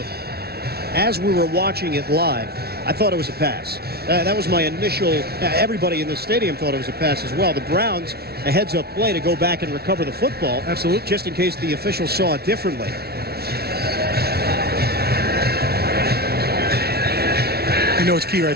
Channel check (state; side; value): late; left; 0.46 ms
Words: as we were watching it live, I thought it was a pass. That was my initial... everybody in the stadium thought it was a pass as well. The Browns, a heads-up play to go back and recover the football. Absolutely. Just in case the officials saw it differently. You know, it's key right